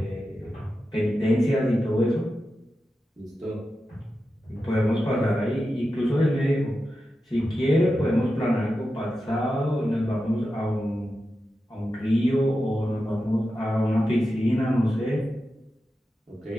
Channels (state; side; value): normal; both; correlation 0.91